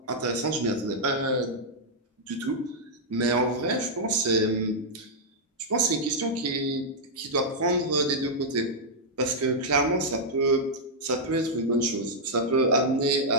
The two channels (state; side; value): normal; both; correlation -0.06